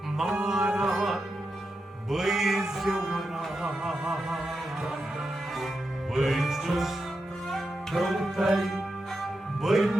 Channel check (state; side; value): normal; both; correlation 0.87